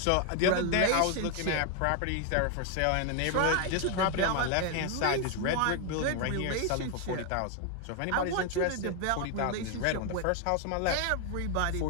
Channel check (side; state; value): both; different; correlation 0.00